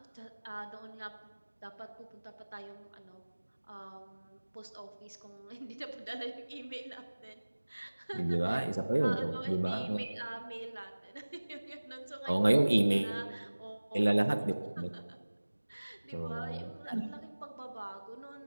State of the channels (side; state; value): both; inverted; correlation -1.00